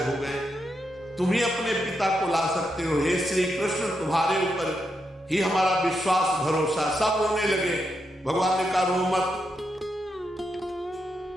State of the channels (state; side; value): normal; both; correlation 0.83